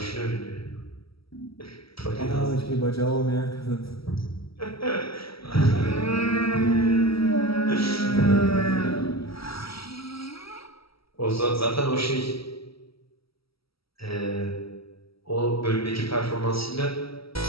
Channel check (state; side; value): late; right; 0.75 ms